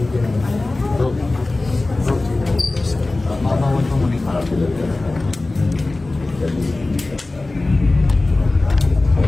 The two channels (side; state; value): right; quieter; 3.1 dB